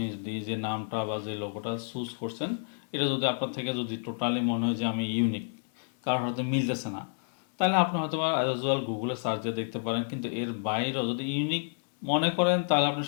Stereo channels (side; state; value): right; silent; 58 dB below the other